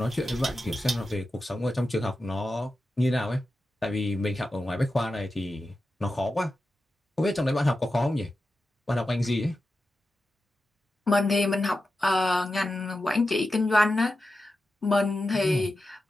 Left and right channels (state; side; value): normal; both; correlation 0.91